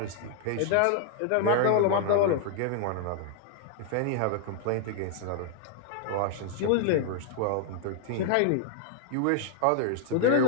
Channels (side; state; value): both; different; correlation 0.00